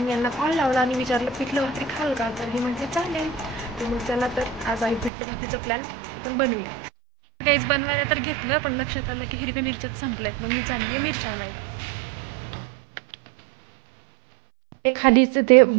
यांना कॉल लावला आणि विचारलं पिठलं भाकरी खाल का. तर हे म्हटले चालेल. तर मग चला तर आज आहे पिठलं भाकरीचा प्लॅन आपण बनवूया. गाईज बनवायला तर घेतलं पण लक्षात आलं की हिरव्या मिरच्याच संपल्यात. मग मी चालली आहे मिरच्या नाही. ते खालीच ते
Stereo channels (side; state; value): left; drops out; at 5.1 s